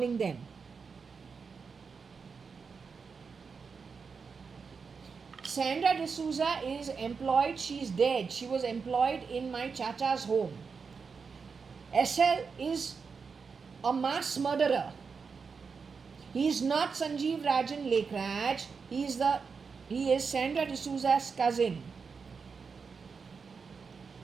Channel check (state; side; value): quieter; left; 5.4 dB